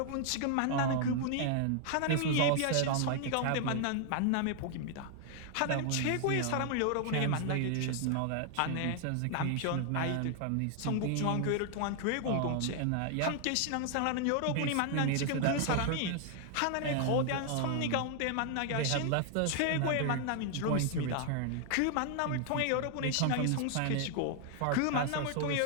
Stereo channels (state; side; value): different; both; correlation 0.00